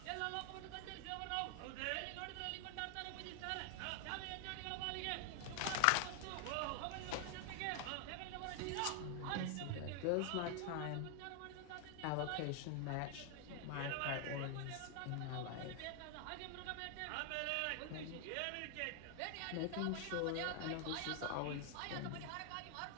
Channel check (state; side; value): different; both; correlation 0.00